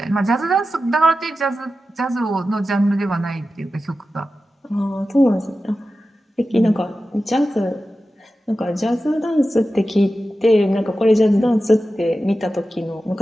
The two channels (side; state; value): both; normal; correlation 0.93